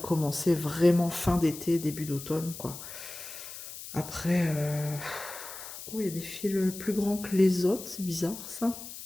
vraiment fin d'été, début d'automne, quoi. Après, oh, il y a des fils plus grands que les autres, c'est bizarre, ça.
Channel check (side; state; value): left; noise; hiss, 12 dB below the sound